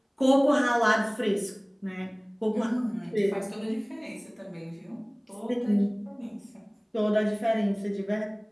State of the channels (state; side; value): identical; both; correlation 1.00